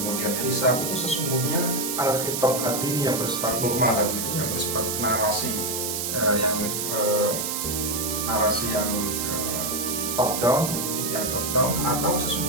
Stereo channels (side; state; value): right; noise; hiss, 2 dB below the sound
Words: hisab, itu sesungguhnya al-khitab at-tini yang bersifat normal tadi itu, yang bersifat narasi yang top down, atau